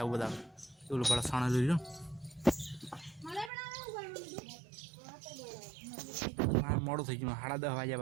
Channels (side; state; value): left; drops out; at 3.5 s